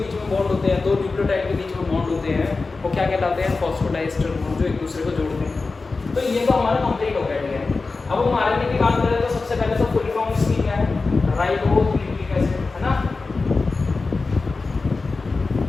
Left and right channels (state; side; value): quieter; right; 3.9 dB